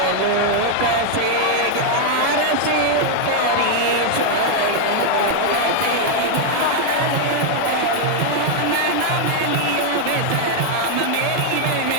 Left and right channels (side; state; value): both; different; correlation 0.00